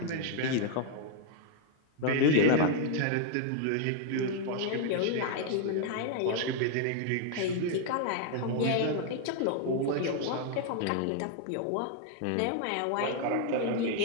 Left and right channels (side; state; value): both; different; correlation 0.00